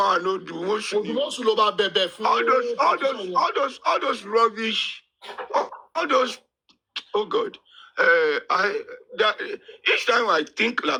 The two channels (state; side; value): identical; both; correlation 1.00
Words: no, the most new. All those rubbish, all those. Oh God, each time I think